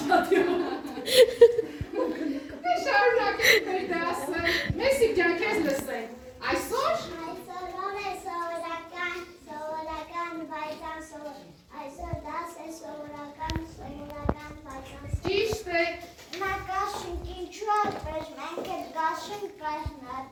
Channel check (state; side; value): identical; both; correlation 1.00